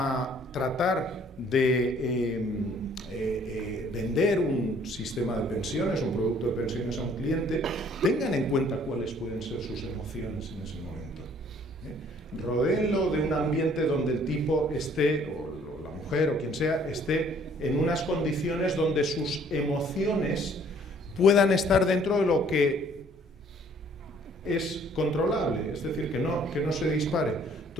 tratar de vender un sistema de pensiones, un producto de pensiones a un cliente, tengan en cuenta cuáles pueden ser sus emociones en ese momento. Rodéenlo de un ambiente donde el tipo esté, o la mujer o quien sea, esté en unas condiciones donde sus emociones puedan estar dentro de lo que es controlable, es decir, que no se dispare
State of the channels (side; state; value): both; normal; correlation 0.59